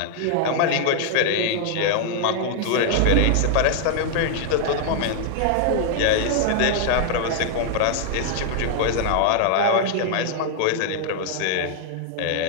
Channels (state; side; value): different; both; correlation 0.00